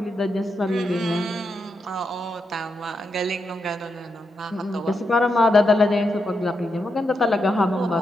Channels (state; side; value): normal; both; correlation 0.84